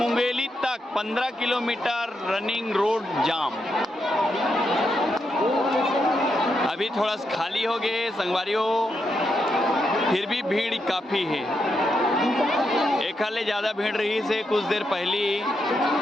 तक 15 किलोमीटर रनिंग रोड जाम। अभी थोड़ा सा खाली हो गए संगवारी हो, फिर भी भीड़ काफ़ी है। एक हाले ज़्यादा भीड़ रही से कुछ देर पहले।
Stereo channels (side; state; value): both; normal; correlation 0.82